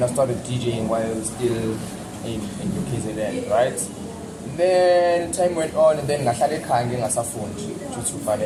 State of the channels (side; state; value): both; identical; correlation 1.00